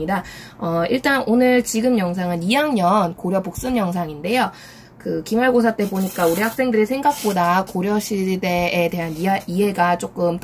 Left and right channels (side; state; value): both; identical; correlation 1.00